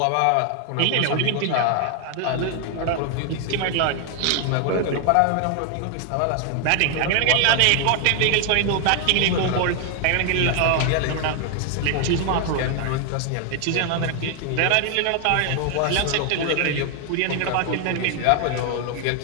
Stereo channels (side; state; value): both; different; correlation 0.00